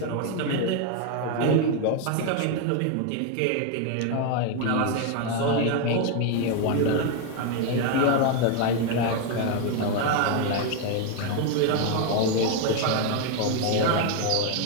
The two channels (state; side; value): different; both; correlation 0.01